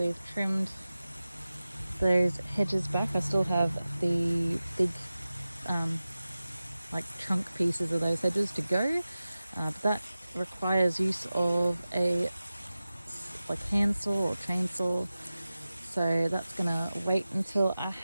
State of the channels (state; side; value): inverted; both; correlation -0.95